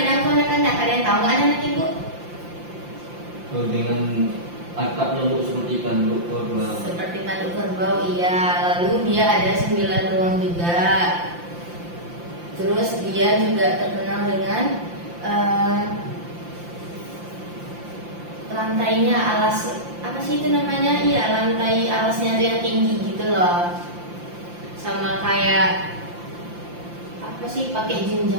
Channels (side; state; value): left; late; 5.8 ms